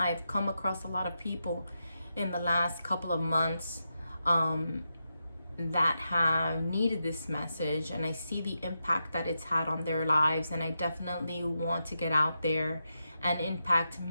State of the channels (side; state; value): both; inverted; correlation -0.87